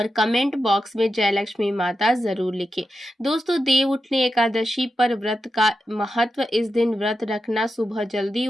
कमेंट बॉक्स में जय लक्ष्मी माता जरूर लिखें। दोस्तों, देव उठनी एकादशी पर व्रत का महत्व। इस दिन व्रत रखना, सुबह जल्दी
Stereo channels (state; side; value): normal; both; correlation 0.89